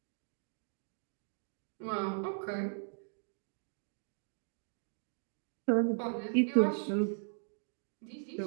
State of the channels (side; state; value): left; silent; digital silence